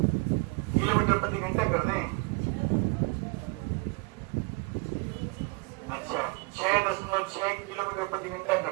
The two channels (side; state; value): left; quieter; 27.9 dB